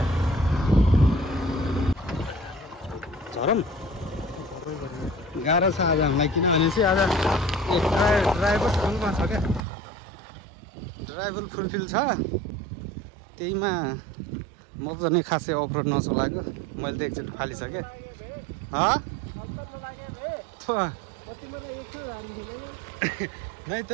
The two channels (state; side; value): drops out; left; at 9.6 s